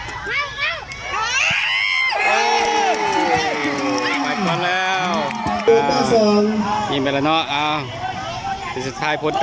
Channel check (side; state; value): both; identical; correlation 1.00